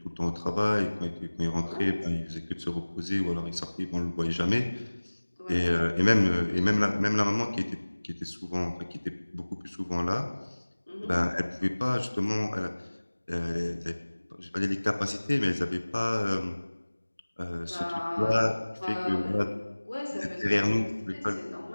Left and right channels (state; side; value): inverted; both; correlation -1.00